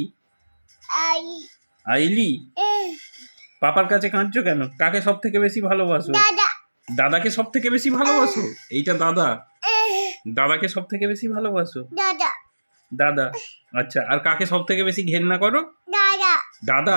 আইলি। পাপার কাছে কাঁদছো কেন? কাকে সব থেকে বেশি ভালোবাসো? দাদাকে সব থেকে বেশি ভালোবাসো? এইটা দাদা। দাদাকে সব থেকে বেশি ভালোবাসো? দাদা। আচ্ছা, আর কাকে সব থেকে বেশি ঘেন্না করো?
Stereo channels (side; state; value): both; inverted; correlation -1.00